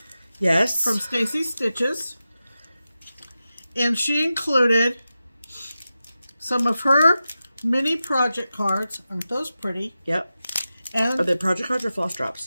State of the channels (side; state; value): both; inverted; correlation -0.93